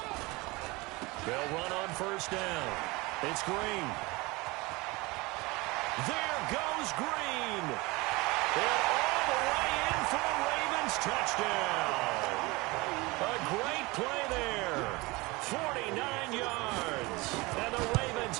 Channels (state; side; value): quieter; left; 23.6 dB